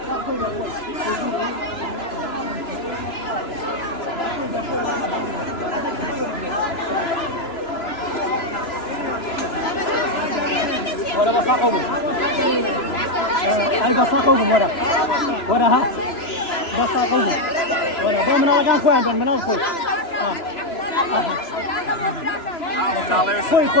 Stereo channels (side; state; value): right; late; 2.9 ms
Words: ولا بصاقهم أي بصاقهم ولا ها بصاقهم ولا بمن أرجع خوي عندنا من الخوي